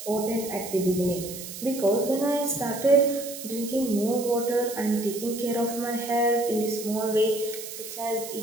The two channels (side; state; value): right; noise; hiss, 10 dB below the sound